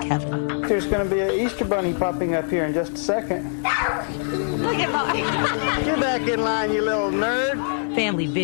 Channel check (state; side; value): silent; right; digital silence